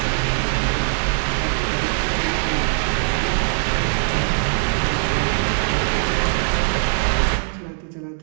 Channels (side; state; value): left; silent; digital silence